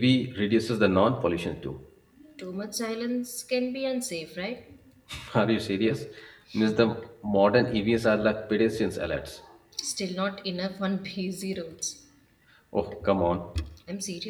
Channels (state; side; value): identical; both; correlation 1.00